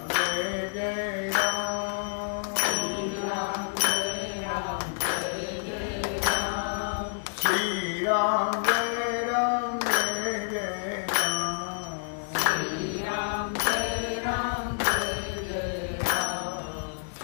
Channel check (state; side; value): silent; right; 59 dB below the other